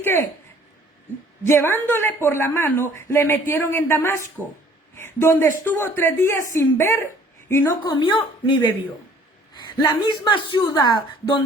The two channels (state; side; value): normal; both; correlation 0.56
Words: llevándole por la mano, le metieron en Damasco, donde estuvo 3 días sin ver y no comió ni bebió. La misma ciudad